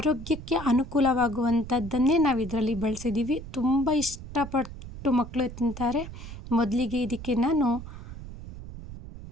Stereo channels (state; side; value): noise; right; rumble, 12 dB below the sound